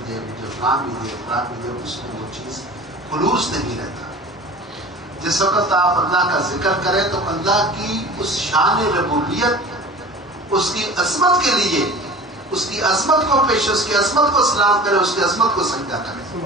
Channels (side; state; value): both; normal; correlation 0.40